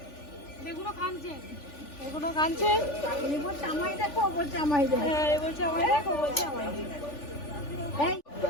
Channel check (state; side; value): late; right; 3.4 ms